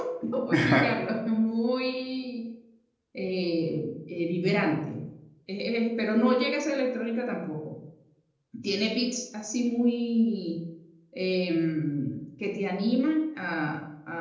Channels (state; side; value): identical; both; correlation 1.00